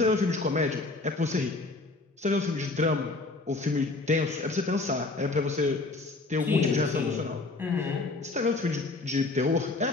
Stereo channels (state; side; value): quieter; right; 3.3 dB